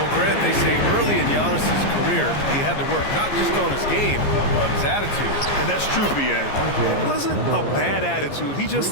Grant, they say early in Giannis' career, he had to work not just on his game, but his attitude. And that's true, B.A. It wasn't a bad attitude. He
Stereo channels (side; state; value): right; late; 15 ms